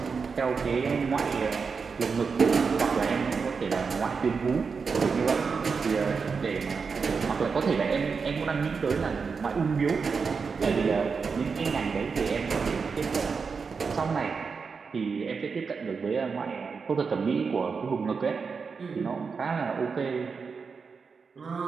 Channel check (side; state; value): left; quieter; 5.3 dB